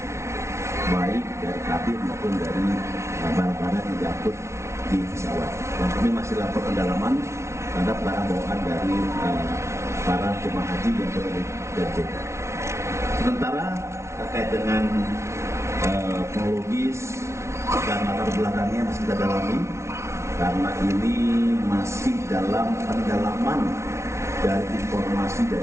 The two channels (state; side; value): late; left; 0.13 ms